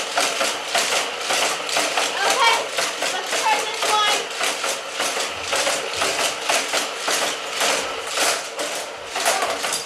Okay. Let's try this one.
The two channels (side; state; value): both; identical; correlation 1.00